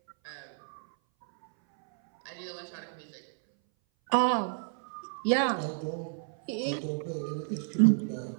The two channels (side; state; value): left; silent; 57 dB below the other